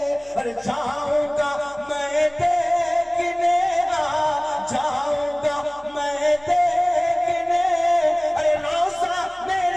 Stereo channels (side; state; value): left; noise; hum, 28 dB below the sound